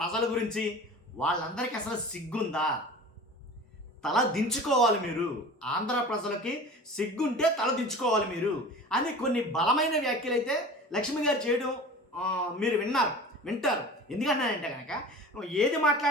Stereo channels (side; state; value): both; normal; correlation 0.38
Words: గురించి. వాళ్ళందరికీ అసలు సిగ్గుందా? తల దించుకోవాలి మీరు. ఆంధ్ర ప్రజలకి సిగ్గుంటే తల దించుకోవాలి మీరు అని కొన్ని బలమైన వ్యాఖ్యలు అయితే లక్ష్మి గారు చేయడం మీరు వింటారు. ఎందుకంటే కనుక ఏది